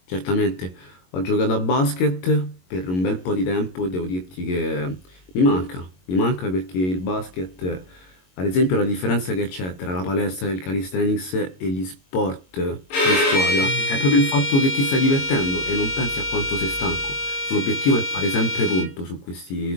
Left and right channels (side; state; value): right; late; 22 ms